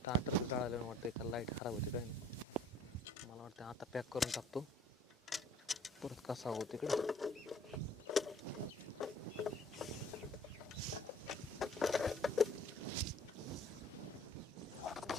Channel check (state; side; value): normal; both; correlation 0.55